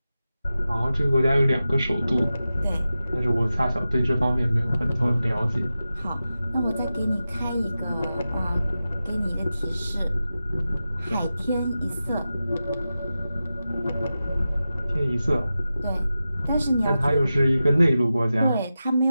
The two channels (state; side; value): inverted; both; correlation -0.93